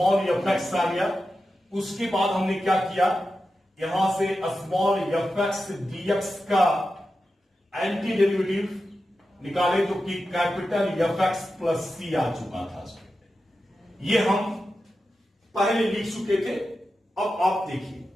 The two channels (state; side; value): normal; both; correlation 0.91